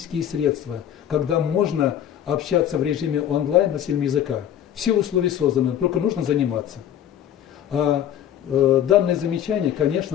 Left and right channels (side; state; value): right; quieter; 10.3 dB